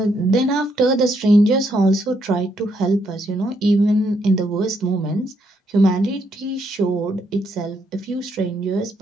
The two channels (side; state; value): both; normal; correlation 0.75